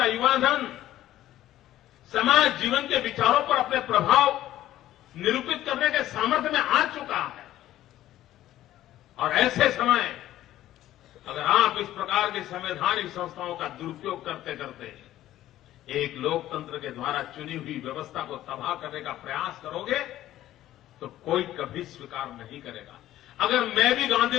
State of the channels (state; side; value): quieter; right; 13.8 dB